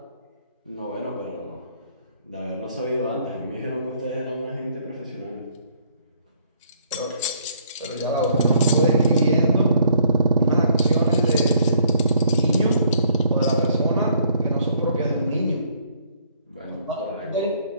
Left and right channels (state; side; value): inverted; both; correlation -0.62